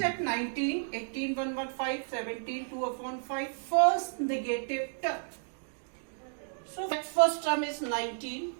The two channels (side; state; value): left; silent; digital silence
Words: 19, 18, 1 upon 5, 17, 2 upon 5, first negative term. So that first term is 19,